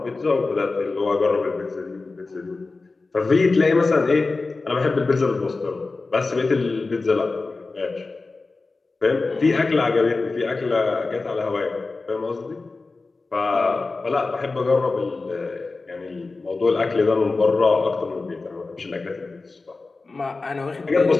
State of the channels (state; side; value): quieter; right; 3.7 dB